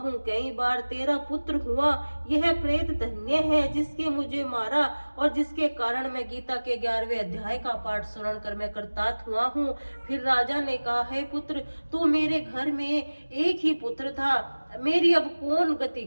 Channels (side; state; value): both; inverted; correlation -1.00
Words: कई बार तेरा पुत्र हुआ। यह प्रेत धन्य है जिसके मुझे मारा और जिसके कारण मैं गीता के 11वें अध्याय का पाठ सुन कर मैं कृतार्थ हुआ हूँ। फिर राजा ने कहा, हे पुत्र, तू मेरे घर में एक ही पुत्र था, मेरी अब कौन गति